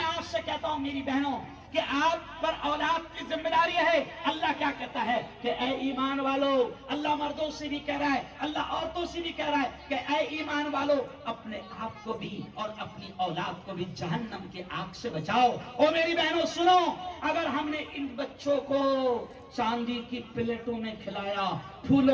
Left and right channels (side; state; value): both; identical; correlation 1.00